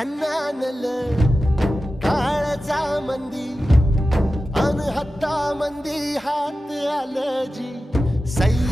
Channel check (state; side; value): normal; both; correlation 0.94